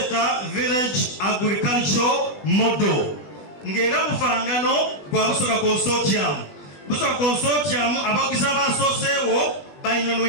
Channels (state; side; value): late; right; 20 ms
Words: village agriculture model ng'era bufangano gwa Busoga consortium. Busoga consortium abagizi abasooseewo